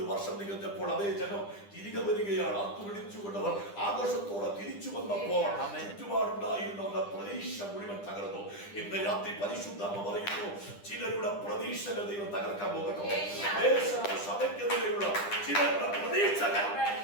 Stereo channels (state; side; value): late; right; 9.9 ms